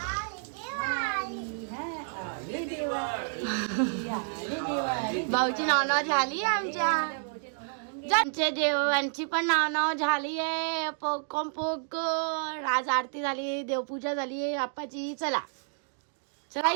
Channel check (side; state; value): left; silent; digital silence